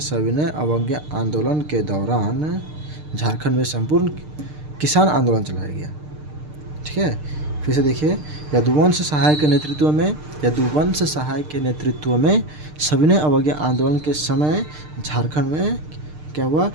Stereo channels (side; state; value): left; late; 6.6 ms